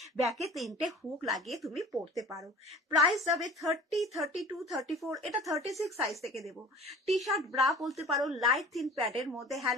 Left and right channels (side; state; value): both; normal; correlation 0.44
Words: ব্যাকে 3টে হুক লাগিয়ে তুমি পরতে পারো। প্রাইস যাবে 30, 32, 34, এটা 36 সাইজ থেকে দেবো। টি শার্ট ব্রা বলতে পারো লাইট থিন প্যাডের মধ্যে,